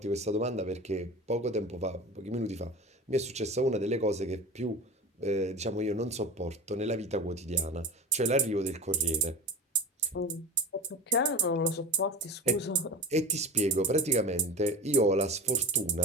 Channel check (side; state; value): both; normal; correlation 0.32